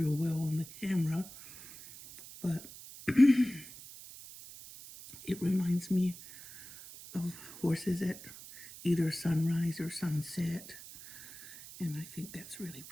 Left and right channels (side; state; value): right; noise; hiss, 16 dB below the sound